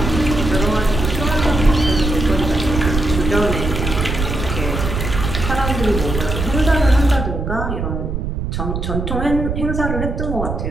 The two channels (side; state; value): right; noise; rumble, 3 dB below the sound